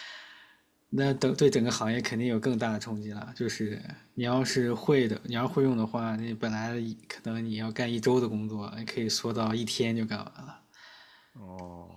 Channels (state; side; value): identical; both; correlation 1.00